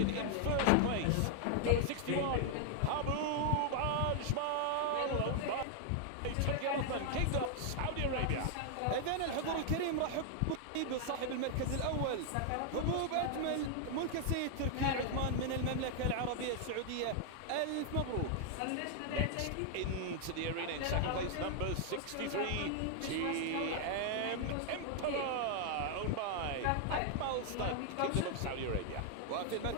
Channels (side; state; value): both; different; correlation 0.00